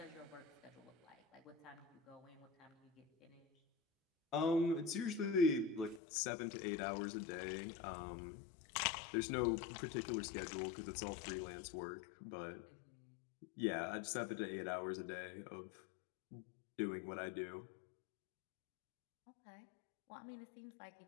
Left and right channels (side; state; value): right; drops out; at 6.0 s